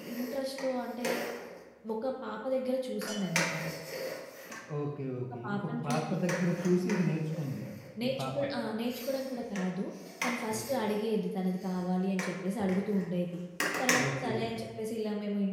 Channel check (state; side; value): identical; both; correlation 1.00